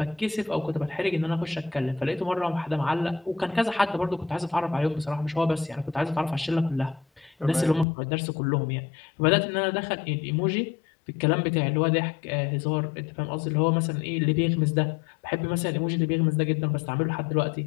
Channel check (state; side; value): drops out; right; at 7.9 s